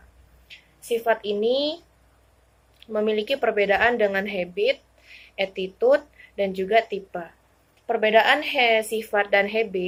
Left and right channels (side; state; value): both; identical; correlation 1.00